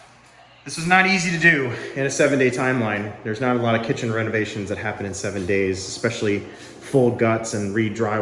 easy to do in a 7-day timeline. There's not a lot of kitchen renovations that happen in 7 days, especially full guts and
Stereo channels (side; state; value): both; identical; correlation 1.00